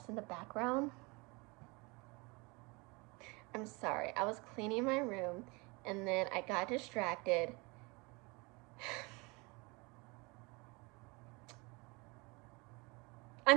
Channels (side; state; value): left; quieter; 27.4 dB